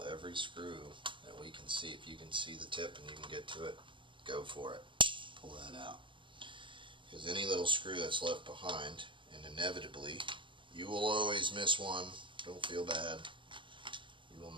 every screw that we can see. If you can see the tip and you can get to it, go for it. Pull that out. Because any little screw that's left behind, and inevitably, you will always miss one. Don't feel bad. You will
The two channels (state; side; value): late; left; 0.24 ms